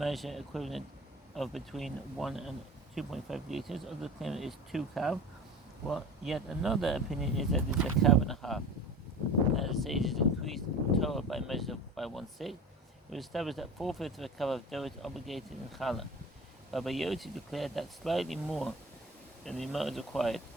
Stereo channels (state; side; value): normal; both; correlation 0.35